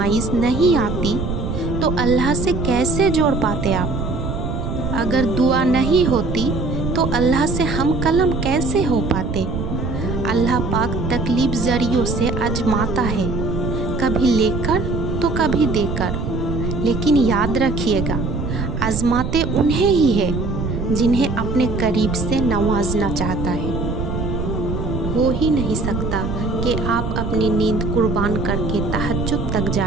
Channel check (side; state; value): right; noise; rumble, 3 dB below the sound